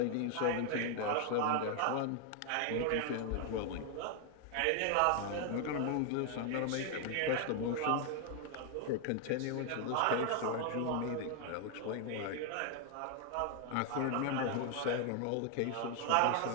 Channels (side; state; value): both; different; correlation 0.01